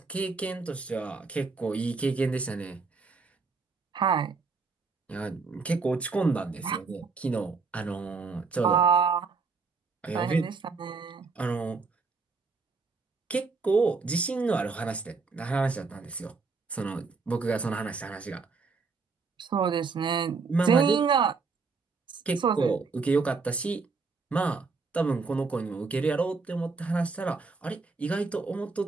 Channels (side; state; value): left; quieter; 4.5 dB